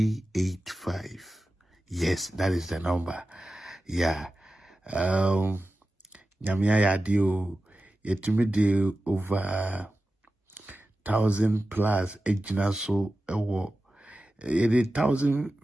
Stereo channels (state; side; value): normal; both; correlation 0.94